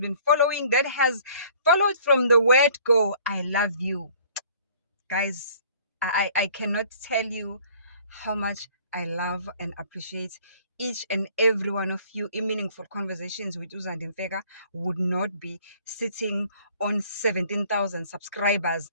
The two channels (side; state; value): both; inverted; correlation -0.55